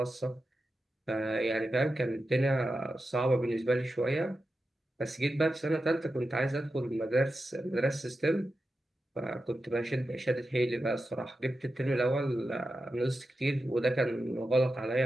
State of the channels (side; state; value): both; normal; correlation 0.90